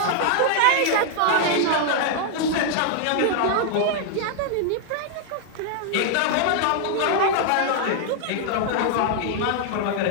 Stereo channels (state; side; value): different; both; correlation 0.00